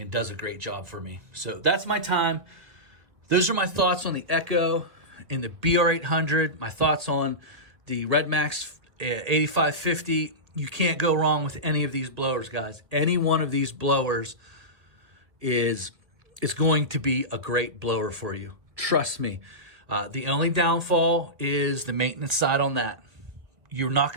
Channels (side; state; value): left; late; 1.5 ms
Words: does a great job for me. So that's my time. Those are my thoughts on the Echo and the BR800, my thoughts on the Red Max 8550. You can't go wrong with any of these blowers, guys. Any one of these blowers is going to be a great blower for you. Trust me. The only downfall is the maintenance side on that. You're not